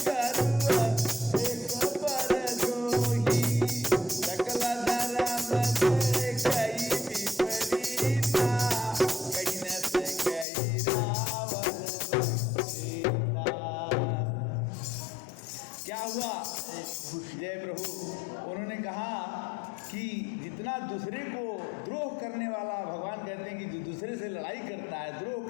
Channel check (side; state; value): right; drops out; at 10.5 s